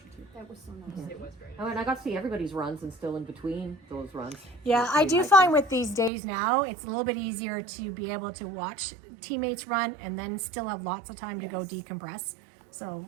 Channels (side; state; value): left; drops out; at 6.1 s